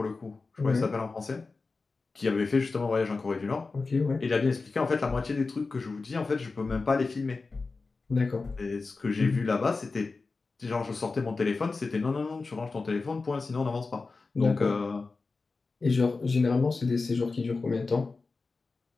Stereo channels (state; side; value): quieter; right; 4.0 dB